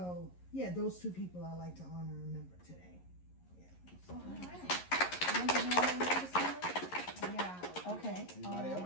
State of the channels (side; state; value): right; late; 11 ms